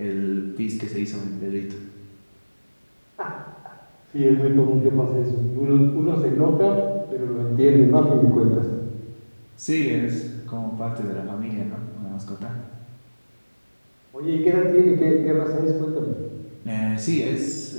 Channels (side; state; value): both; inverted; correlation -1.00